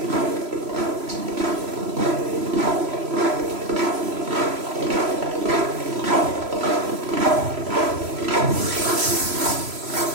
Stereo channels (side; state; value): left; late; 3.0 ms